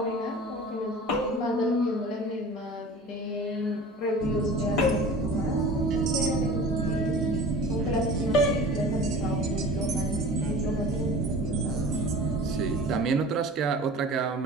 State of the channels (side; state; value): both; normal; correlation 0.40